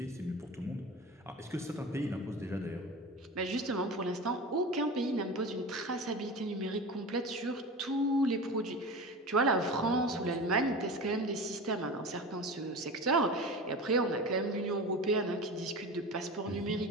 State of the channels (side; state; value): both; normal; correlation 0.30